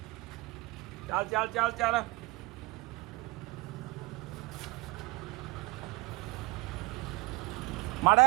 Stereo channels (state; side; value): quieter; left; 22.8 dB